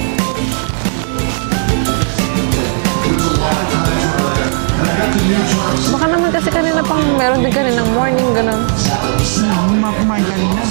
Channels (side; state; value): left; silent; 67 dB below the other